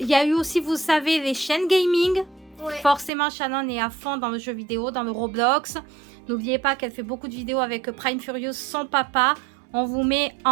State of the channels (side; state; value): left; drops out; at 3.1 s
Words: y a eu aussi, vous savez, les chaînes gaming. Ouais. Forcément, Shannon est à fond dans le jeu vidéo, dans le Roblox. N'oubliez pas qu'elle fait beaucoup de vidéos avec Prime Furious, son papa. On vous met